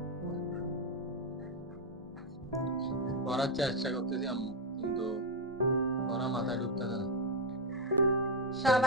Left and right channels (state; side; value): normal; both; correlation 0.04